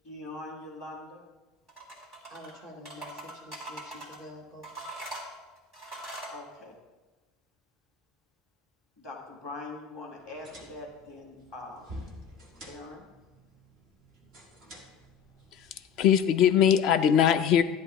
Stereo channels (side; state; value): right; quieter; 8.2 dB